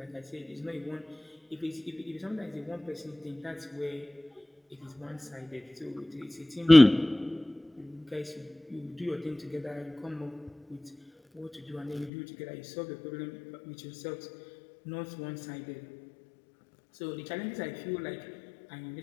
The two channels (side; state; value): right; drops out; at 12.1 s